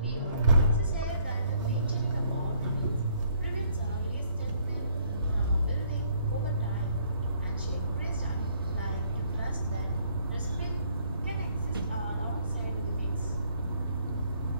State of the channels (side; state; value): both; inverted; correlation -0.65